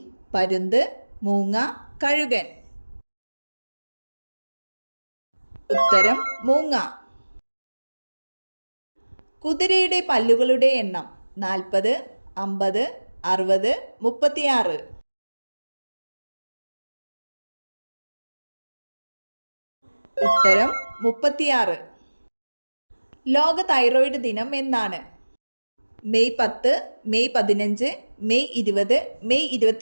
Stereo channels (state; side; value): inverted; both; correlation -1.00